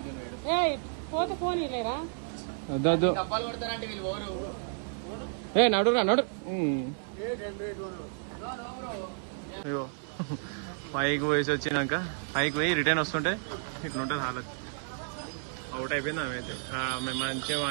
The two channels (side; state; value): left; silent; 57 dB below the other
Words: వద్దు ఏ నడురా నడు అయ్యో పైకి పోయేసి వచ్చినాక పైకి పోయి రిటర్న్ వస్తుంటే ఇట్లుంటుంది హాలత్ అవుట్ అయిపోయింది ఆమె అయితే మేము మంచిగా